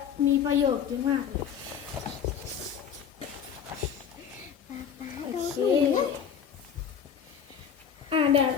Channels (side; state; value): right; quieter; 7.9 dB